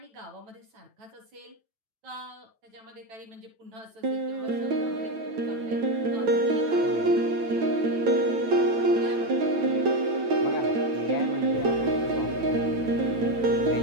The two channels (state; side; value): late; left; 9.0 ms